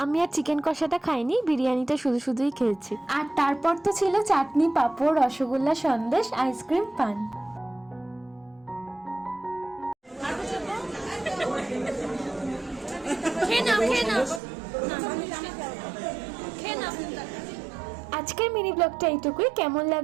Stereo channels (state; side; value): drops out; left; at 14.4 s